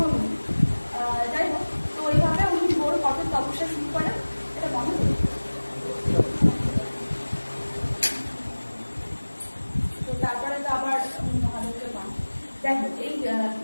নয়। যাই হোক, তো ওইভাবে উনি বড় কঠোর তপস্যা শুরু করেন, এটা মনে করি। তো তারপরে তো আবার মহাদেবকে পান। যাই হোক, এই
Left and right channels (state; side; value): inverted; both; correlation -1.00